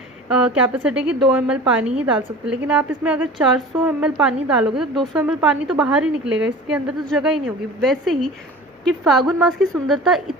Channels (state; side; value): normal; both; correlation 0.39